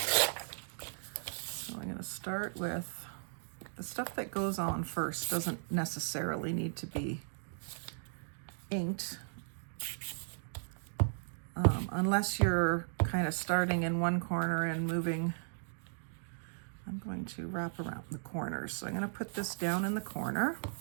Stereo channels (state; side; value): silent; left; digital silence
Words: So I'm going to start with the stuff that goes on first. Doesn't necessarily need to be inked unless you're kind of starting in one corner and moving. I'm going to wrap around the corners. So I'm going to put this down in the corner.